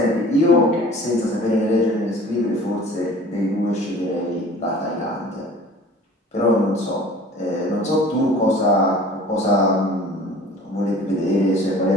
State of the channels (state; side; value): normal; both; correlation 0.46